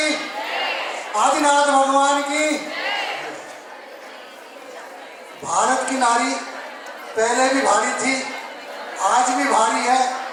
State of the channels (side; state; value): both; identical; correlation 1.00